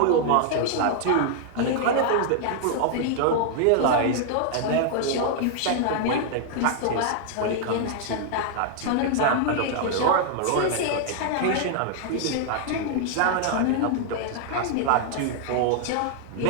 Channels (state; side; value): different; both; correlation 0.00